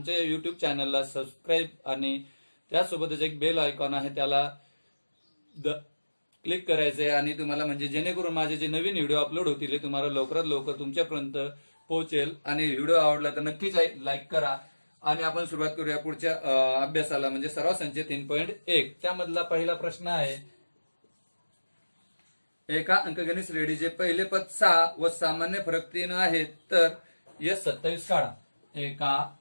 युट्यूब चॅनलला सबस्क्राईब आणि त्यासोबतच एक बेल आयकॉन आहे त्याला क्लिक करायचंय. आणि तुम्हाला म्हणजे जेणेकरून माझे जे नवीन व्हिडिओ अपलोड होतील ते तुम्हाला लवकरात लवकर तुमच्यापर्यंत पोहोचेल. आणि व्हिडिओ आवडला तर नक्कीच लाईक करा. आणि आपण सुरुवात करूया पुढच्या अभ्यासाला, म्हणजे सराव संच 3.1. त्यामधला पहिला प्रश्न आहे, एका अंकगणित श्रेणीचे पहिले पद 6 व सामान्य फरक 3 आहे, तर S27 काढा. एका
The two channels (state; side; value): inverted; both; correlation -1.00